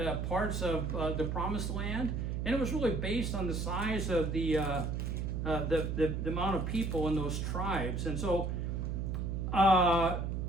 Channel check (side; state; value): right; noise; hum, 2 dB below the sound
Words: parts of the promised land. And it was really based on the size of the amount of people in those tribes. And so